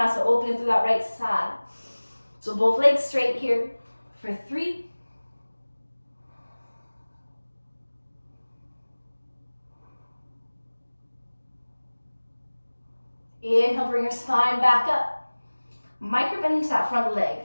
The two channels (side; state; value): both; inverted; correlation -1.00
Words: opening through that right side. So both legs straight here for 3. Inhale, bring your spine back up. Micro bend into that front leg.